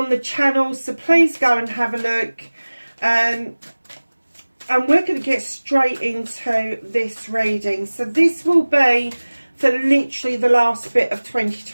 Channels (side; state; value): both; inverted; correlation -1.00